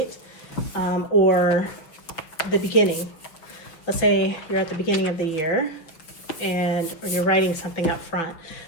or the beginning, let's say you're at the beginning of the year and or you're writing something up front,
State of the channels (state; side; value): late; right; 6.1 ms